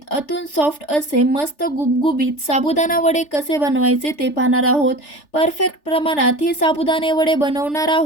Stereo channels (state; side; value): late; right; 3.4 ms